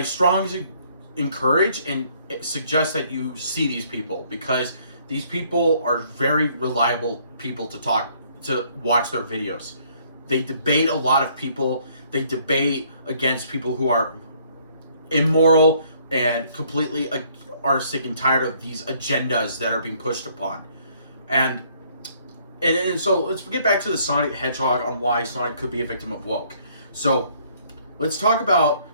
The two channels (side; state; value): both; inverted; correlation -0.63